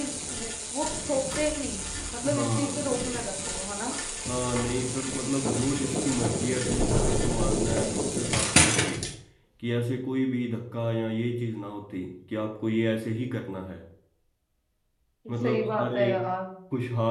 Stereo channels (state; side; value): identical; both; correlation 1.00